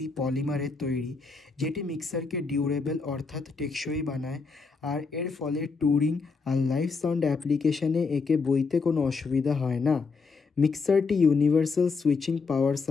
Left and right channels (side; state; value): right; quieter; 4.6 dB